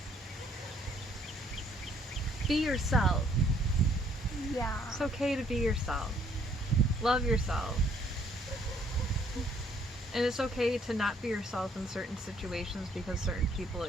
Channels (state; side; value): normal; both; correlation 0.65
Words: Be yourself. Yeah. It's okay to be yourself. Love yourself. And it's okay to not be yourself in certain situations because certain people